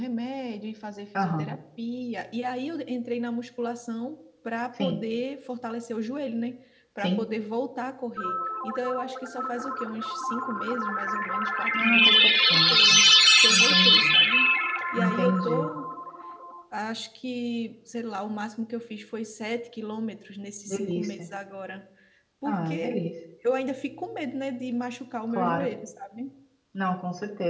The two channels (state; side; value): identical; both; correlation 1.00